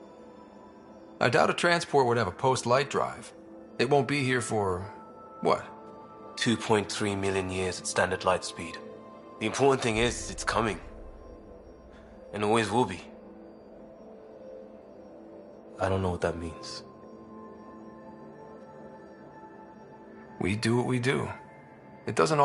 I doubt a transport would have a post-light drive. It won't be here for... what? 2.3 million years at standard light speed. The important thing is, it's coming. And always will be. I don't know what that means. We do what we do. It doesn't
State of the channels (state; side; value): identical; both; correlation 1.00